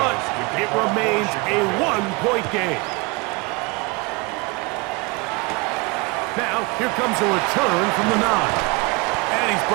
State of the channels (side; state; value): left; quieter; 27.6 dB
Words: it remains a 1-point game. Now, here comes a return from the 9. And he's